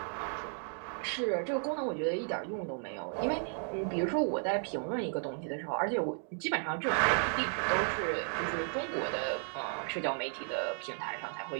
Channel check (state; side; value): silent; left; 55 dB below the other